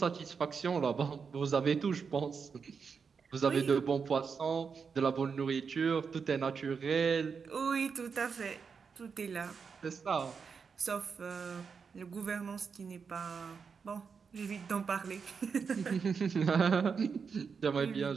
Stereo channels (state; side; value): quieter; left; 5.8 dB